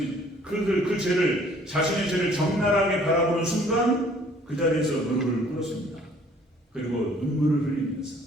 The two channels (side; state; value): both; normal; correlation 0.57